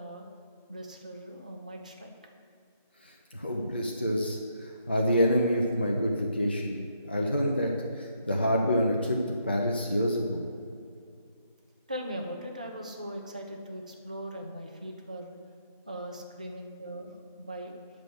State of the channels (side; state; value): both; inverted; correlation -0.75